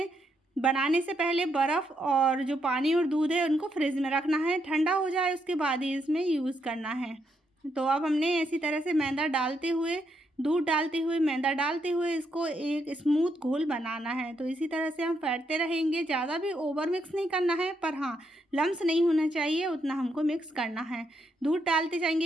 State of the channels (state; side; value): normal; both; correlation 0.78